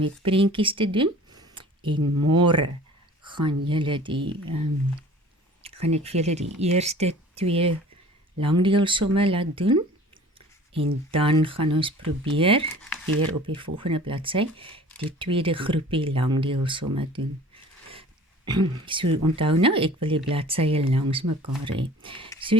prentjies te doen, en môre gaan ek vir julle die eerste 2 langdeelsomme laat doen, en dan gaan ons probeer, weer op die volgende bladsy, die tweede groepie langdeelsomme doen. So, onthou nou, ek wil die bladsye langs mekaar hê.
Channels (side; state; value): both; normal; correlation 0.46